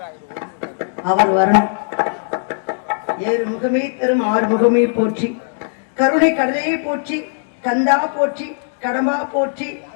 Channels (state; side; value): silent; right; digital silence